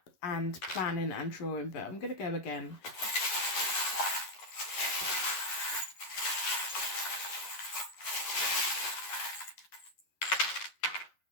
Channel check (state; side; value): late; right; 11 ms